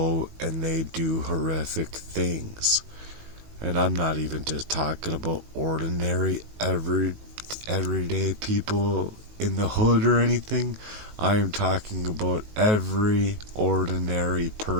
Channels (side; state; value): left; late; 19 ms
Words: and they do horrific things. And I'm not even just talking about ordinary, everyday people in the hood or anything. I am talking about every ordinary